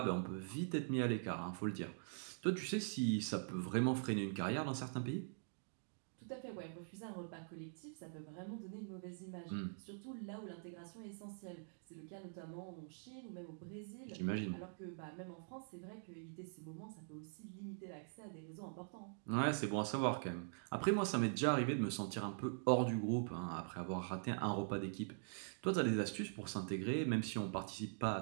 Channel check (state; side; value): silent; left; digital silence